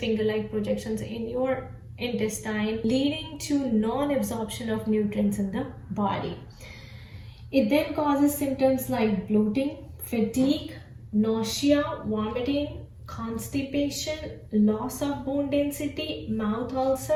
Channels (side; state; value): both; identical; correlation 1.00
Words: projections in your intestine, leading to non-absorption of nutrients in the body. It then causes symptoms like bloating, fatigue, nausea, vomiting, constipation, loss of bone density, mouth